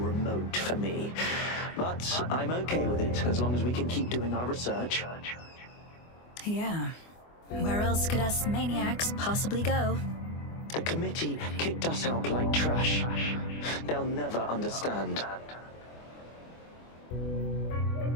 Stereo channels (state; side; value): late; right; 24 ms